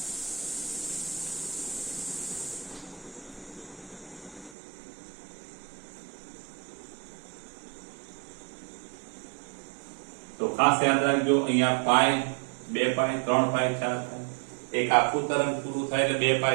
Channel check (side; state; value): left; drops out; at 4.5 s